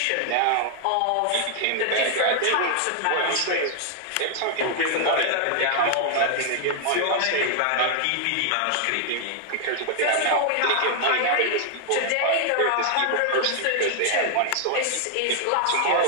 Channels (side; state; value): both; different; correlation 0.00